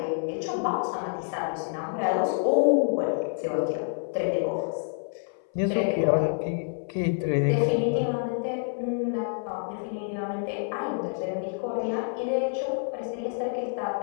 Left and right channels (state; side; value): silent; right; 57 dB below the other